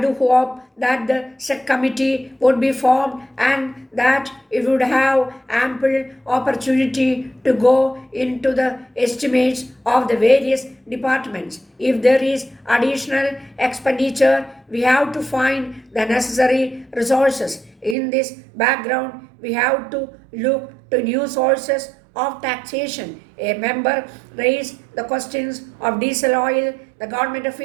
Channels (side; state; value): left; drops out; at 17.9 s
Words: hope that the said committee would be formed and that it would have ample opportunity to go into the estimates of the various departments. If there is additional expenditure, we have to find the necessary resources. In this background, we have to look to new sources of taxation. A member raised the questions of diesel oil. The government of